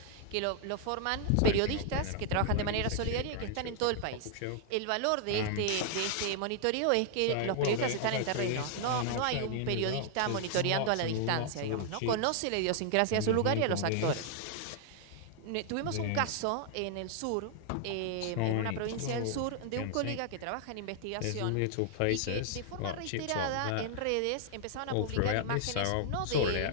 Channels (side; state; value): both; different; correlation 0.00